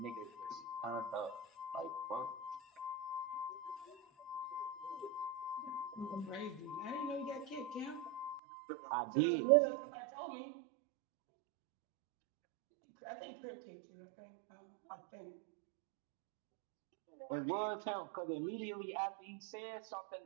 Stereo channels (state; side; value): drops out; left; at 8.4 s